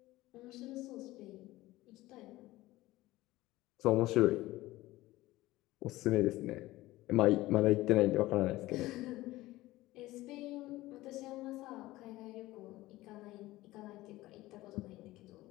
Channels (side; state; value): right; quieter; 17.8 dB